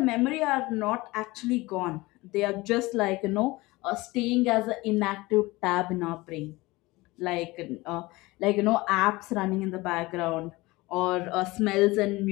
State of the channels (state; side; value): quieter; right; 21.3 dB